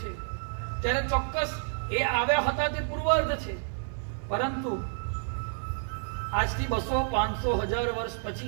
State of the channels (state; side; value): silent; left; 55 dB below the other